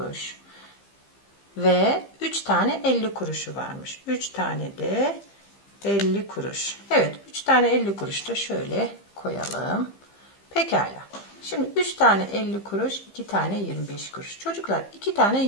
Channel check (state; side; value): late; right; 15 ms